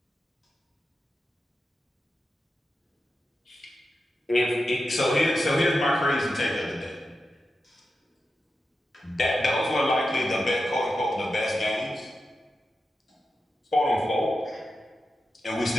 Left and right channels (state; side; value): normal; both; correlation 0.90